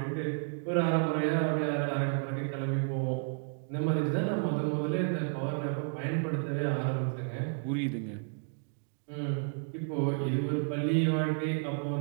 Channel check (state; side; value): silent; left; 55 dB below the other